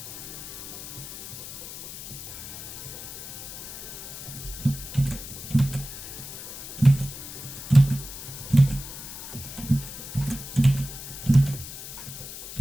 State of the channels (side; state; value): left; noise; hiss, 10 dB below the sound